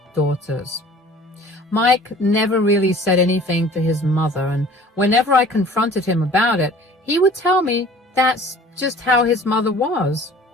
daughters. Mike never really said anything to his mother, and whenever I confronted him about it, he would tell me that's just how his mother was.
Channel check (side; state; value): both; normal; correlation 0.48